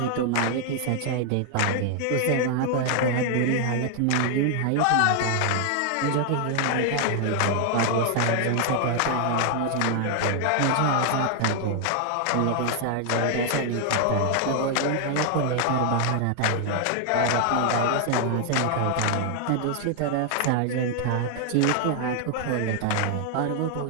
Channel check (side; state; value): both; different; correlation 0.00